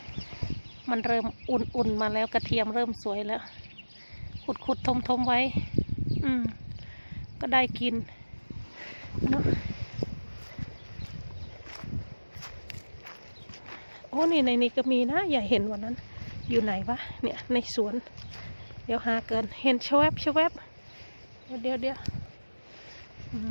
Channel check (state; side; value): inverted; both; correlation -1.00